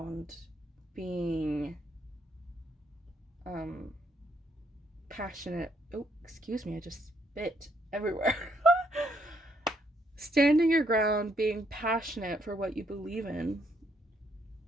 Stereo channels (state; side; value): normal; both; correlation 0.72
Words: being passionate. Oh, excuse me, I just spit everywhere. Standing your ground, being passionate for what you believe in.